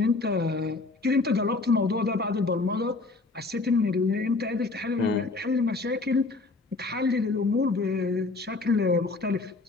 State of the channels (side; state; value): right; quieter; 3.6 dB